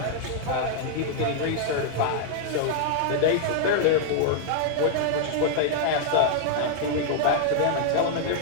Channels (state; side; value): different; both; correlation -0.01